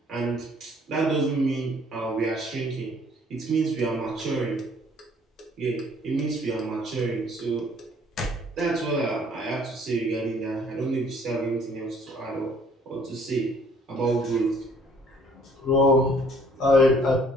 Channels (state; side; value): normal; both; correlation 0.58